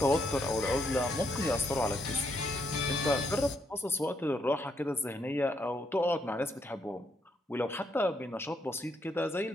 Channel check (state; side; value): normal; both; correlation 0.76